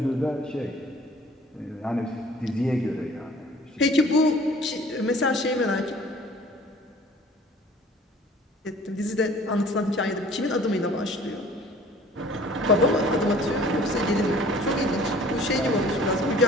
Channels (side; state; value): both; normal; correlation 0.51